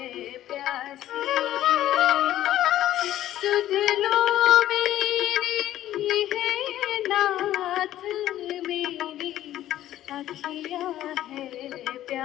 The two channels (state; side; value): quieter; right; 13.1 dB